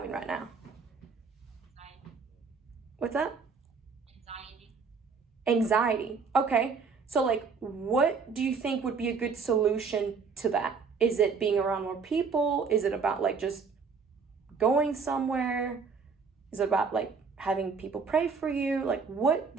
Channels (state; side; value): quieter; left; 5.2 dB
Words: right now? Anxiety. What's that? Anxiety. Anxiety. Okay. So like, what do you think would be a good solution to that? Is it being around more people? Is it about like just going somewhere? Is it about like having people pray for you? Like, what